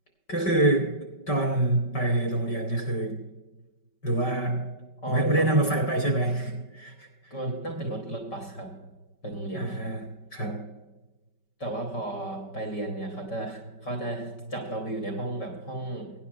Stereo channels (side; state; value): right; late; 5.2 ms